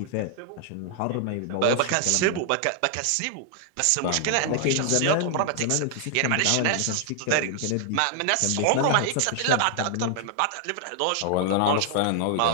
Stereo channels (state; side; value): different; both; correlation 0.00